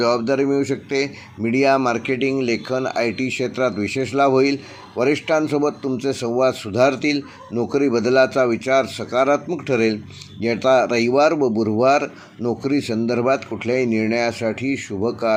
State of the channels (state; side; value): identical; both; correlation 1.00